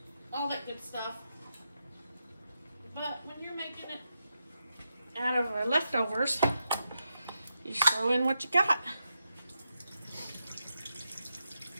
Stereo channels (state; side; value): inverted; both; correlation -0.86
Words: all that good stuff. But when you're making it out of leftovers, you just throw in what you got.